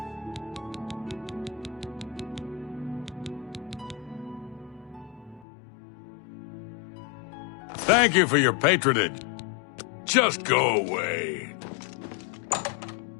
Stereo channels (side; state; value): right; drops out; at 5.5 s